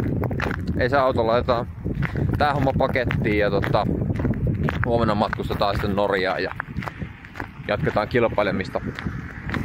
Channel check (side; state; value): both; identical; correlation 1.00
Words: Ei se auto laitetaan tää homma pakettiin ja huomenna matkustetaan sitten Norjaan ja jatketaan kilpailemista